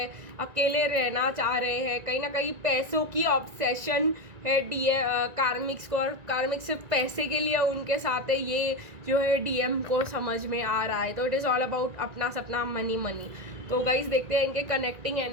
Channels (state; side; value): late; left; 1.9 ms